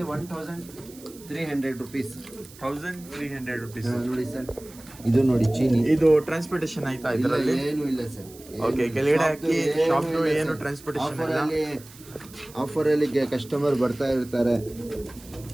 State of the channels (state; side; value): noise; right; hiss, 21 dB below the sound